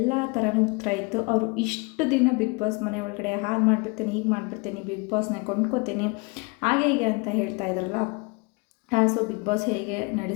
ಥರನೂ ಉತ್ತರ ಇತ್ತು. ಅವರು ಇಷ್ಟು ದಿನ ಬಿಗ್ ಬಾಸ್ ಮನೆ ಒಳಗಡೆ ಹಾಗೆ ಮಾಡಿಬಿಡ್ತೀನಿ, ಹೀಗೆ ಮಾಡಿಬಿಡ್ತೀನಿ, ಬಿಗ್ ಬಾಸ್ನ ಕೊಂಡ್ಕೋತೀನಿ, ಹಾಗೆ ಹೀಗೆ ಅಂತ ಹೇಳ್ತಾ ಇದ್ರಲ್ಲ. ಸೊ ಬಿಗ್ ಬಾಸ್ ಹೇಗೆ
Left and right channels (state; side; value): quieter; right; 29.2 dB